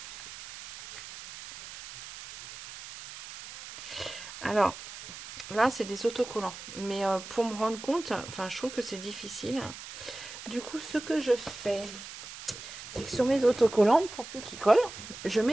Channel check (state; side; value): noise; right; hiss, 13 dB below the sound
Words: Alors, là, c'est des autocollants. Mais pour me rendre compte, enfin, je trouve que c'est difficile. Du coup, ce que je fais, c'est que sur mes autocollants, pour plus qu'ils collent, je